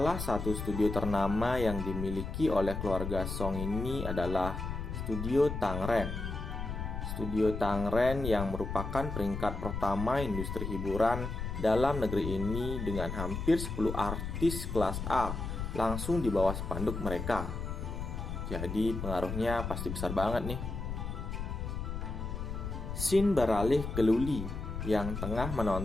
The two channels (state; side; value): noise; left; rumble, 5 dB below the sound